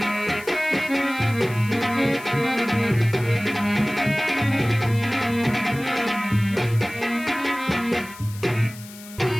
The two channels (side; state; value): left; noise; hiss, 18 dB below the sound